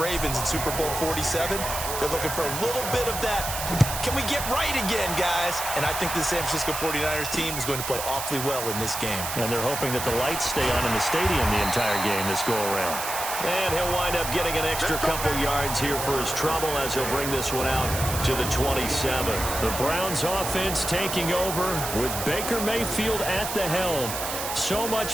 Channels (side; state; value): right; noise; hiss, 5 dB below the sound